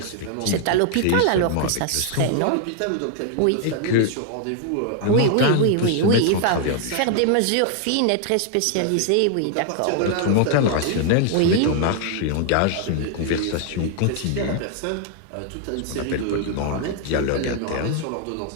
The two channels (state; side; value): different; both; correlation 0.00